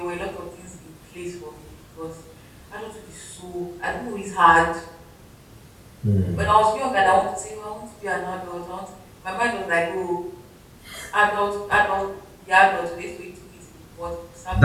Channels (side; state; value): both; identical; correlation 1.00